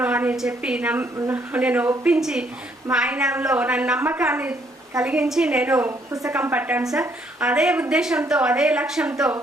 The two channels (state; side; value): normal; both; correlation 0.68